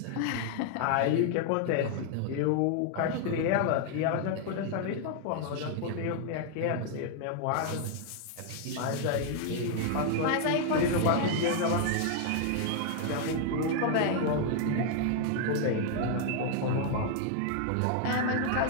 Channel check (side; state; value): both; different; correlation 0.00